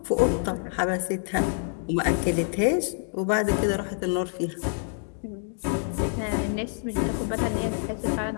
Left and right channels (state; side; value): silent; right; 60 dB below the other